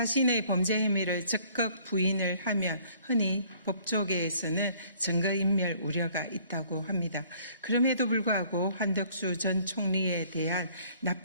범죄 혐의를 적극 부인을 하면 흔히 법조계에서는 증거인멸 우려가 있다고 합니다. 그럼에도 불구하고 한덕수 전 총리에 대한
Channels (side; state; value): both; inverted; correlation -0.58